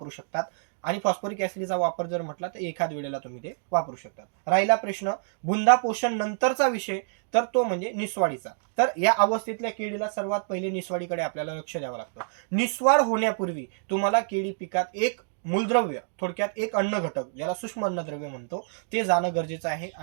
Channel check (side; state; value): left; silent; digital silence